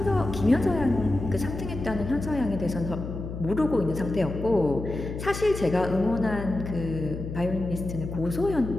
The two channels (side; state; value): left; noise; hum, 7 dB below the sound